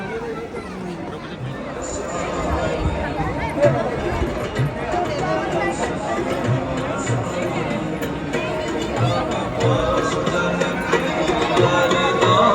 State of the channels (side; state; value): both; identical; correlation 1.00